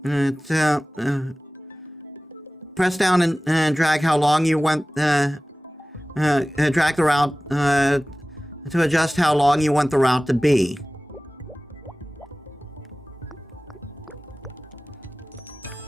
press down and drag how long you want drag the route to adjust how long you want the route to be.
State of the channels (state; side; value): normal; both; correlation 0.98